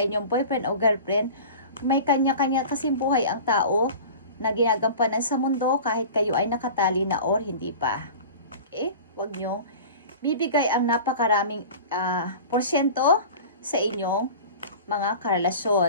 inyong boyfriend o girlfriend. May kanya-kanya kasing buhay ang tao na ginagampanan sa mundo kahit kayo ay nakatali na or hindi pa. Okay? Huwag nyo bibigay ang napakaraming porsyento sa inyong mga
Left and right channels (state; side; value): inverted; both; correlation -0.37